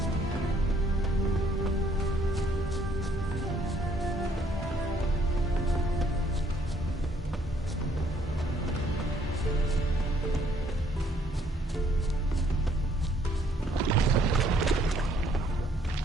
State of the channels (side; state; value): both; normal; correlation 0.65